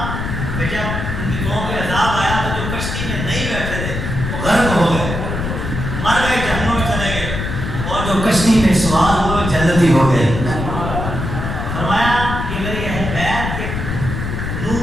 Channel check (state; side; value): noise; left; rumble, 4 dB below the sound